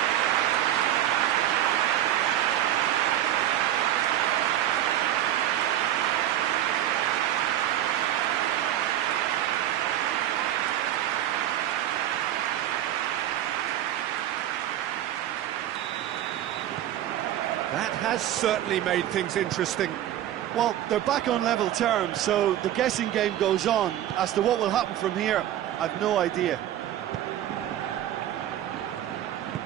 That has certainly made things interesting. Well, they're back on level terms, so the guessing game goes on. As to what will happen from here, I've no idea.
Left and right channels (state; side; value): quieter; left; 12.2 dB